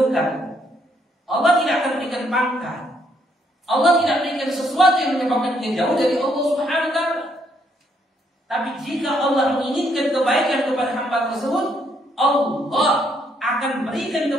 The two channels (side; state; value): both; normal; correlation 0.72